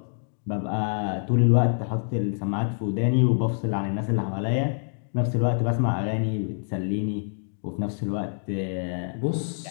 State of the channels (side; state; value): right; silent; digital silence